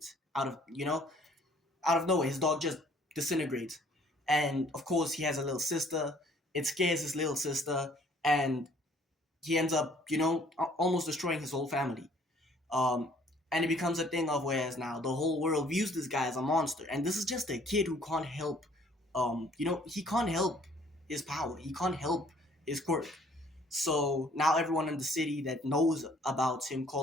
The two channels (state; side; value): normal; both; correlation 0.59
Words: Out of nowhere, his dog just disintegrates. And of course, he has a little sister. It scares his little sister, and he ends up, almost destroying his whole family. Um, and it becomes a thing of, whereas now the whole world views this guy as a monster, and this is just a kid who can't help. He can't help his power. He can't help his quirk. So now everyone in the city that knows about him